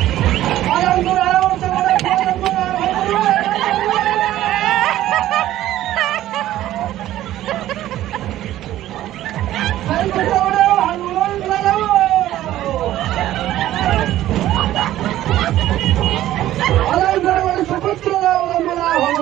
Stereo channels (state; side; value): quieter; left; 13.9 dB